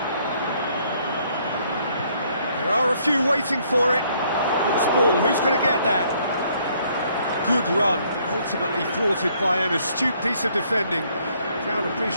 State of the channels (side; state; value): both; inverted; correlation -0.66